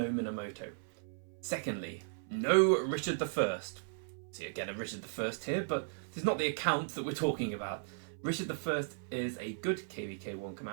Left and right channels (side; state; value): left; silent; 54 dB below the other